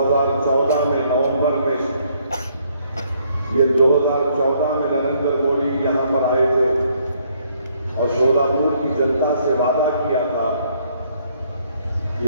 में नवंबर में ये 2014 में नरेंद्र मोदी यहां पर आए थे और सोलापुर की जनता से वादा किया था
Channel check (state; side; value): inverted; both; correlation -0.68